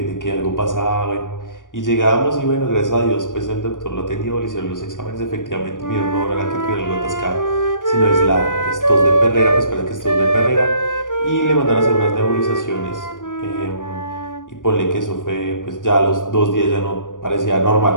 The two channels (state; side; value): late; right; 0.88 ms